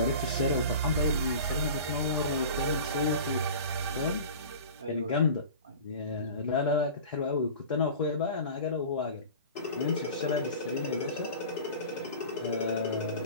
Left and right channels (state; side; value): inverted; both; correlation -0.37